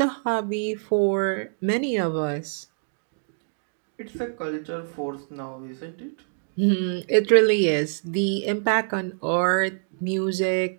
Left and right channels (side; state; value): left; silent; digital silence